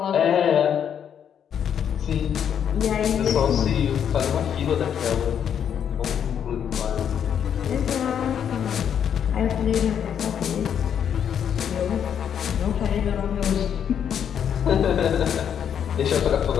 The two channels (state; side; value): quieter; right; 8.5 dB